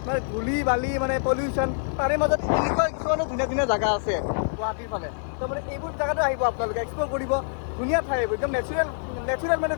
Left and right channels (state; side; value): silent; right; 61 dB below the other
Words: মানে ধূলি বালি মানে পলিউশ্যন তাৰে মাজত এনেকুৱা কিছুমানো ধুনীয়া জেগা আছে গুৱাহাটীৰ ফালে তো মানে এইবোৰ জেগাতো আহিব আপোনালোকে এক্সপ্ল'ৰ কৰিব ধুনীয়া ঠাই এইবোৰ একদম নেচাৰেল মানে